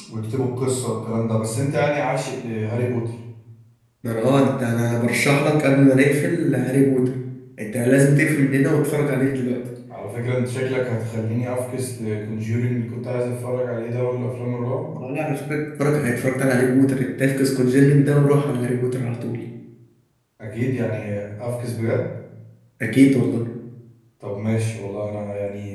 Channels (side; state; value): both; identical; correlation 1.00